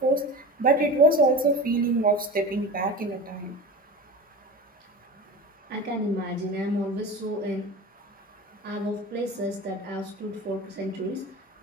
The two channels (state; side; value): normal; both; correlation 0.31